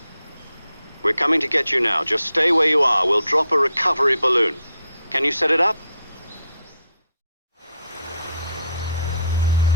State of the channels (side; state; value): both; inverted; correlation -0.74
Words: We're coming to get you now. Just stay where you are. We'll drop a recovery balloon. Can you set it up?